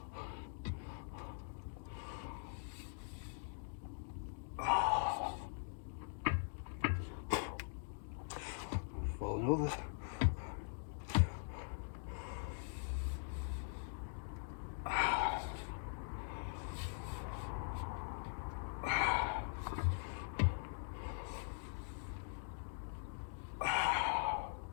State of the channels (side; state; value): right; silent; digital silence